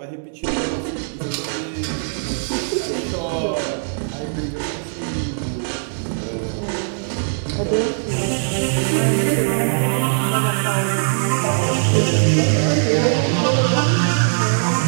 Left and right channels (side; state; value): left; silent; digital silence